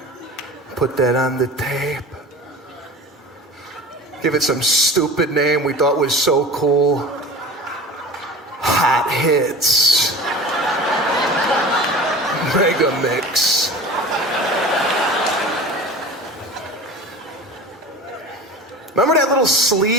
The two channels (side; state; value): both; normal; correlation 0.37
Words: Put that on the tape. Give it some stupid name we thought was so cool. Hot Hits. Mega Mix. Remember that little